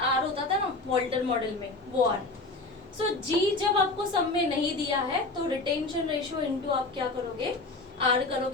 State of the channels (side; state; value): right; quieter; 3.2 dB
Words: R होता था ना वॉल्टर मॉडल में, वो R. सो G जब आपको सम में नहीं दिया है तो रिटेंशन रेशियो इनटू आप क्या करोगे? R